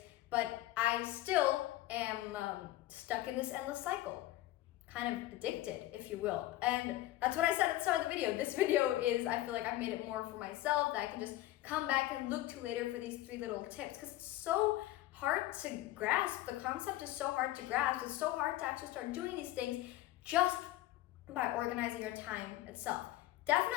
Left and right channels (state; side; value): quieter; right; 15.8 dB